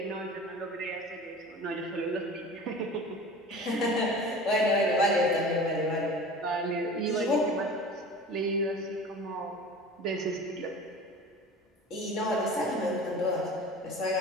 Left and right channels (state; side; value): normal; both; correlation 0.38